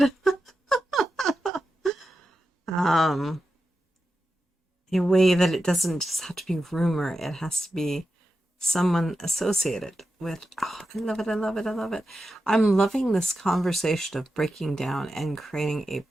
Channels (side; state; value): both; normal; correlation 0.90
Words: A way that it doesn't just have to be rumor, it has to be someone associated with. Oh, I love it, I love it, I love it. I'm loving this conversation of breaking down and creating a